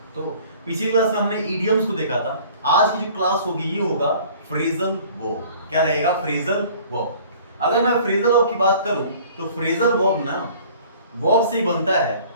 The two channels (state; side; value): inverted; both; correlation -0.50